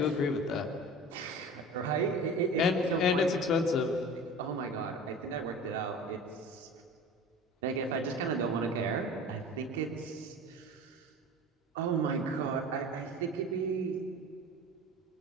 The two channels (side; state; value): both; normal; correlation 0.37